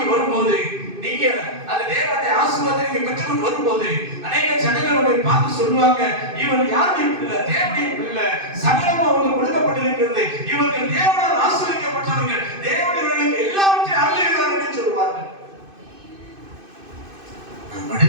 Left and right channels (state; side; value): late; left; 2.5 ms